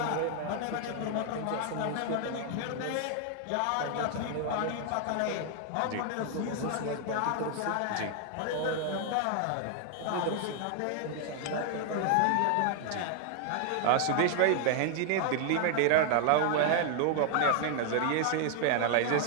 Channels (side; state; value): both; different; correlation 0.00